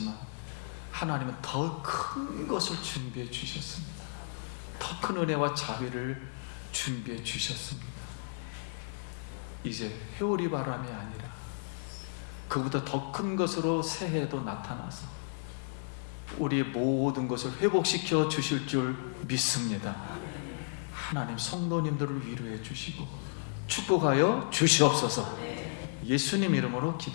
하나님은 더 큰 것을 준비해 주셨습니다. 더 큰 은혜와 자비를 준비해 주셨습니다. 이제 회오리 바람이 아니라 그보다 더 큰 것으로 새해도 나타나서 우리의 모든 것을 회복시켜 주실 줄 믿습니다. 하나님 성도님들을 위로해 주시고 축복하여 주시옵소서. 예수님 이름으로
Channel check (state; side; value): silent; right; digital silence